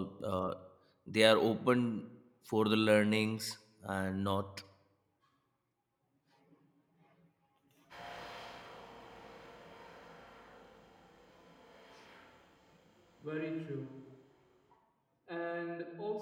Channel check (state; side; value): identical; both; correlation 1.00